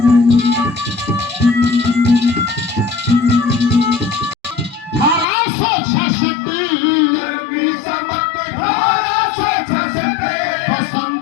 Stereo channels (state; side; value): drops out; right; at 5.2 s